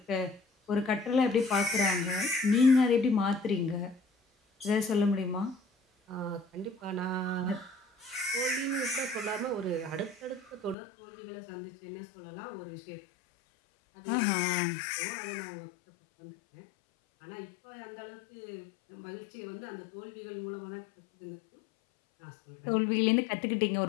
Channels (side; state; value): right; drops out; at 10.8 s